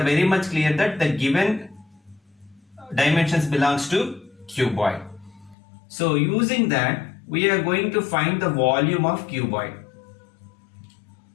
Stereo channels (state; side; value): drops out; right; at 5.6 s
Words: very much clear that the given dimensions belongs to cuboid. So using that, we are going to find the volume of cuboid.